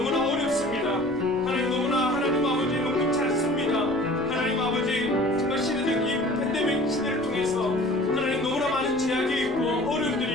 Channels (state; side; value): noise; left; rumble, 20 dB below the sound